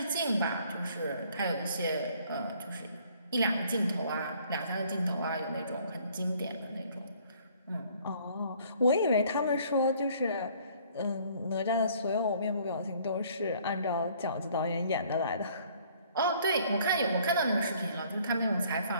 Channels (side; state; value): both; inverted; correlation -0.59